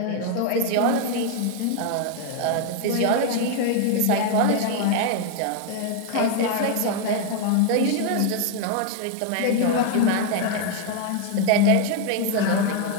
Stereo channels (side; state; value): both; different; correlation 0.01